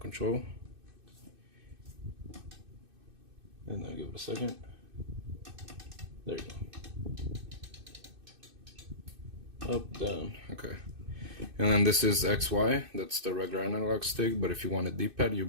and then give it a second. There you go. Up, down, okay. And then this is XY, that's the regular analog stick, but if you want a D-pad, you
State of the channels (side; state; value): left; late; 2.6 ms